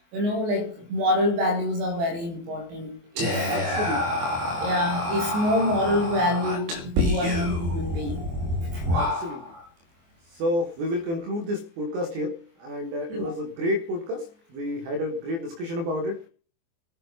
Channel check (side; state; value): left; late; 24 ms